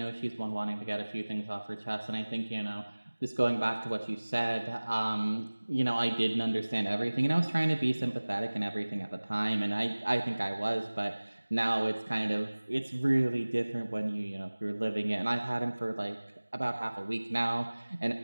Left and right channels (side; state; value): both; inverted; correlation -1.00